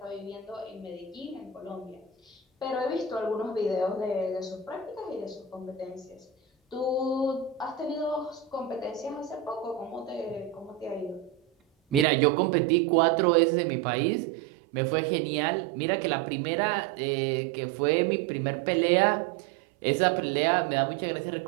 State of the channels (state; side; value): drops out; left; at 12.1 s